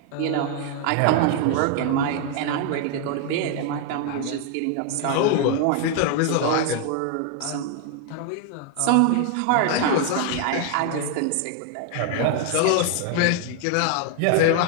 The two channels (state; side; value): different; both; correlation 0.00